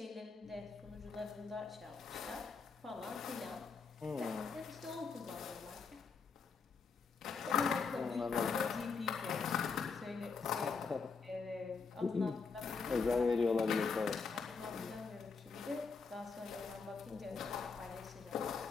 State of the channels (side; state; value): right; quieter; 5.0 dB